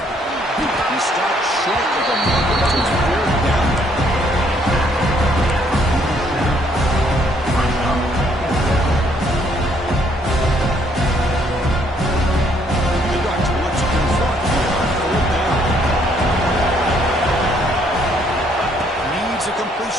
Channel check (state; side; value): normal; both; correlation 0.67